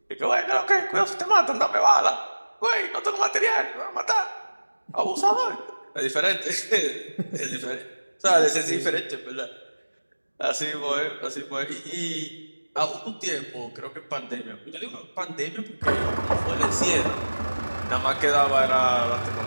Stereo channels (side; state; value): both; inverted; correlation -1.00